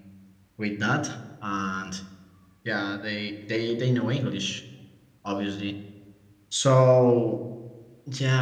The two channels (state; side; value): identical; both; correlation 1.00